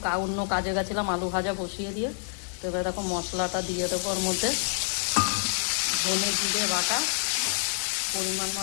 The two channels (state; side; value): silent; right; digital silence